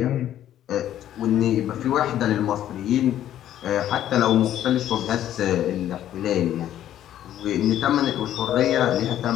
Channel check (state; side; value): quieter; right; 11.7 dB